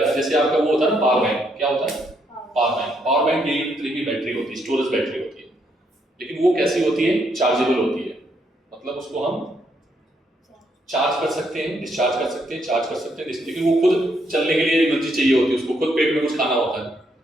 जैसे आपका वो होता है ना पावर बैंक, क्या होता है, पावर बैंक। पावर बैंक एक तरह की बैटरी होती है, स्टोरेज बैटरी होती है, लेकिन वो कैसी होती है, चार्जेबल होती है। मतलब उसको हम चार्ज कर सकते हैं, डिस्चार्ज कर सकते हैं, चार्ज कर सकते हैं, लेकिन वो खुद चलने के लिए एनर्जी चाहिए होती है, उसको खुद पेट में कुछ खाना होता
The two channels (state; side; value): normal; both; correlation 0.75